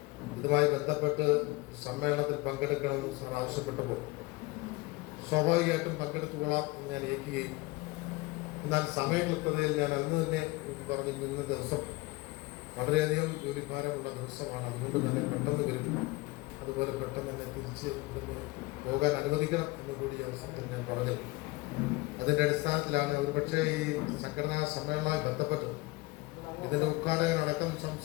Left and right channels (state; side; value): quieter; right; 21.9 dB